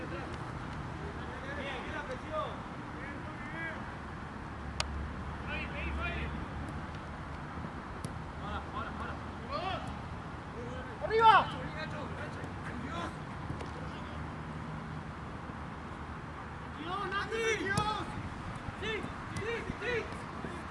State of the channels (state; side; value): identical; both; correlation 1.00